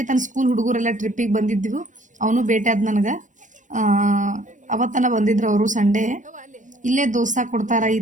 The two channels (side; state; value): left; late; 0.37 ms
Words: ಸ್ಕೂಲ್ ಹುಡುಗರೆಲ್ಲ ಟ್ರಿಪ್ಪಿಗೆ ಬಂದಿದ್ದೆವು. ಅವನು ಭೇಟಿ ಆದ ನನಗೆ. ಅವತ್ತನ ಬಂದಿದ್ರು ಅವರು ಸಂಡೇ. ಇಲ್ಲೇ ದೋಸೆ ಕೊಡ್ತಾರೆ ಈ